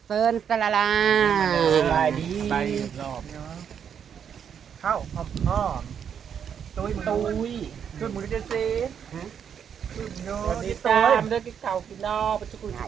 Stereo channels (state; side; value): quieter; left; 8.0 dB